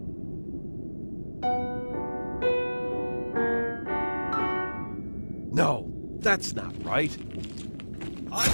No, that's not right. I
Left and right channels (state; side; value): inverted; both; correlation -1.00